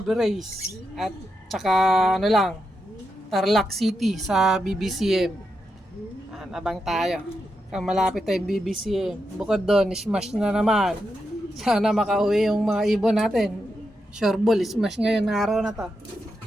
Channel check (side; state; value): both; normal; correlation 0.86